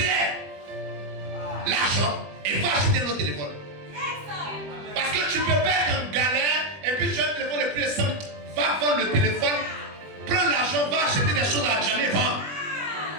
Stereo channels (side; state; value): left; late; 20 ms